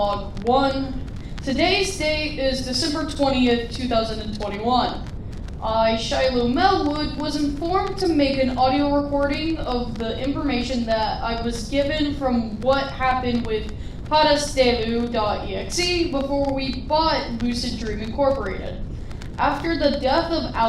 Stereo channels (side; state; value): both; identical; correlation 1.00